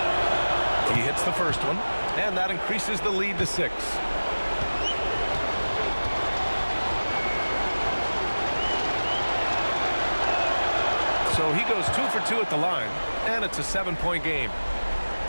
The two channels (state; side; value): inverted; both; correlation -1.00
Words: He hits the first one, and that increases the lead to 6. So he goes 2 for 2 at the line, and it's a 7-point game.